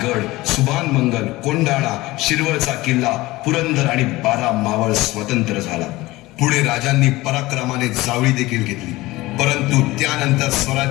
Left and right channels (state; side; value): quieter; right; 19.4 dB